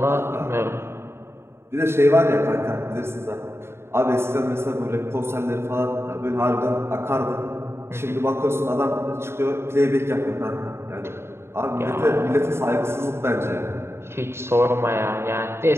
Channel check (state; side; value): late; left; 0.12 ms